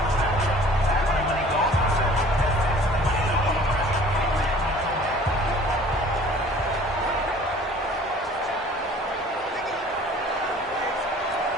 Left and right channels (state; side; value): normal; both; correlation 0.50